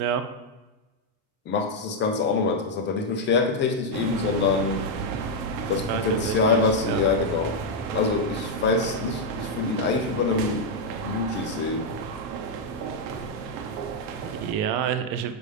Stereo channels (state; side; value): normal; both; correlation -0.02